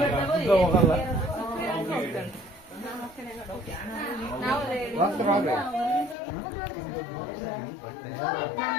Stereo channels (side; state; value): right; drops out; at 6.2 s